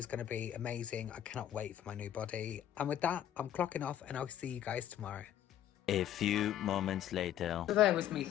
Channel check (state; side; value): quieter; right; 11.1 dB